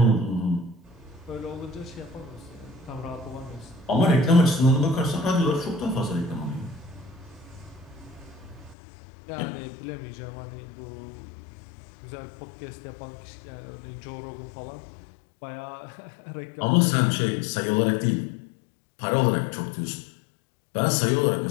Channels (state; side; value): drops out; right; at 8.8 s